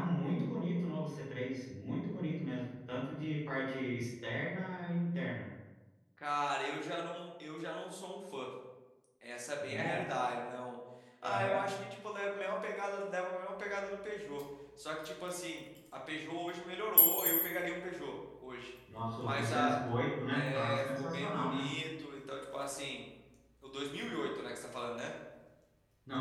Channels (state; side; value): identical; both; correlation 1.00